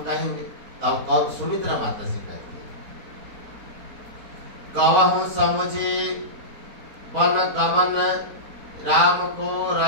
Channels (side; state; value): left; late; 4.4 ms